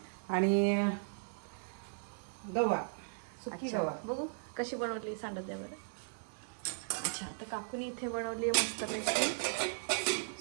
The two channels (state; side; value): silent; left; digital silence